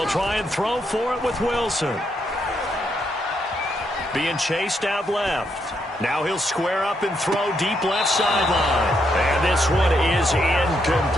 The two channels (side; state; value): both; normal; correlation 0.78